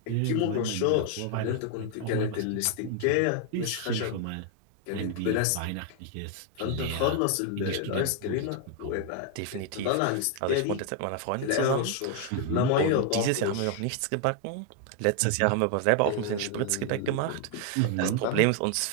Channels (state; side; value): different; both; correlation 0.00